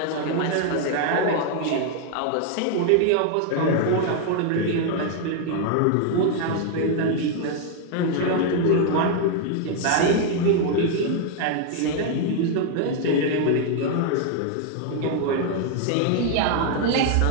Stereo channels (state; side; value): different; both; correlation 0.00